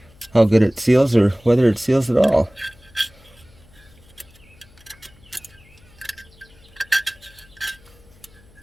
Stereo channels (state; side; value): noise; left; hum, 27 dB below the sound